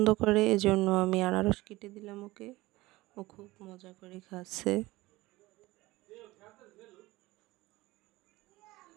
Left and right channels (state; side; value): quieter; left; 19.4 dB